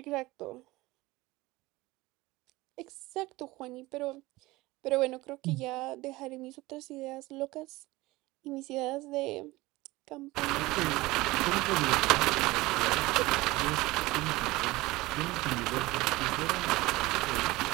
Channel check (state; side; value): quieter; left; 20.1 dB